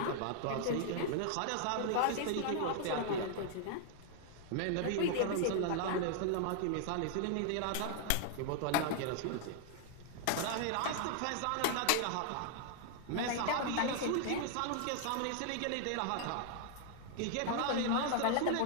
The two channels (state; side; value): different; both; correlation 0.00